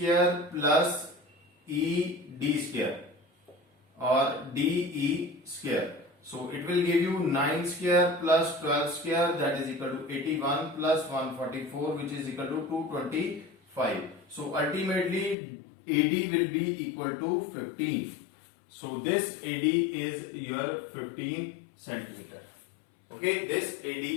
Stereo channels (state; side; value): drops out; right; at 15.4 s